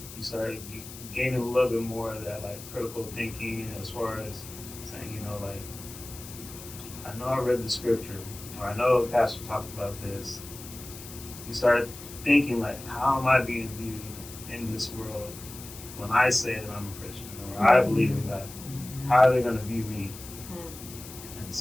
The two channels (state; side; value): noise; left; hiss, 14 dB below the sound